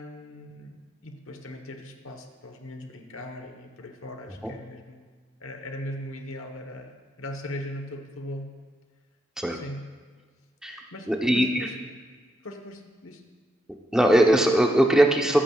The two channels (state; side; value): normal; both; correlation 0.81